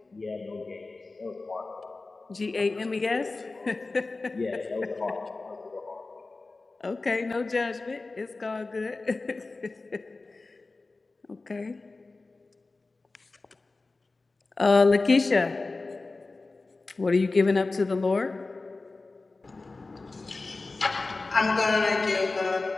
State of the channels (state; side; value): quieter; right; 3.5 dB